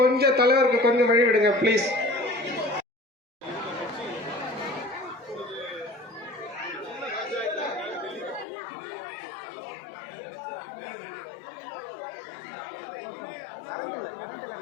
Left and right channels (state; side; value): drops out; right; at 8.5 s